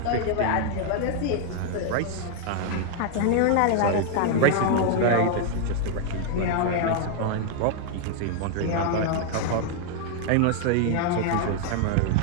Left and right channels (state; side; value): different; both; correlation 0.00